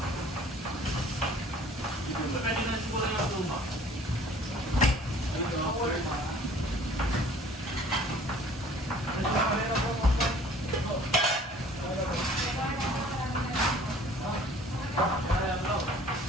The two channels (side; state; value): both; normal; correlation 0.52